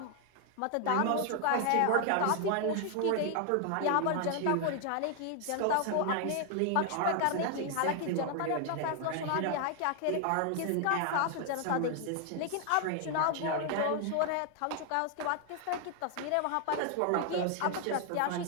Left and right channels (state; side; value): different; both; correlation 0.00